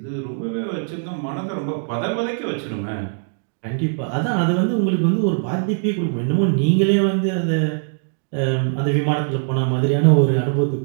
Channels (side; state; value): left; silent; 65 dB below the other